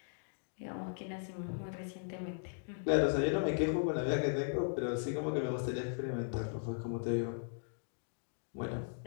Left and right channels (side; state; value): right; silent; digital silence